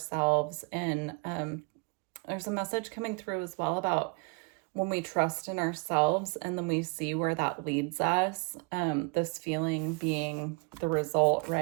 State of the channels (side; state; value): left; quieter; 32.2 dB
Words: And there's a message coming through as well about when we trust in ourselves and then we see where that leads us, this feeling being the result,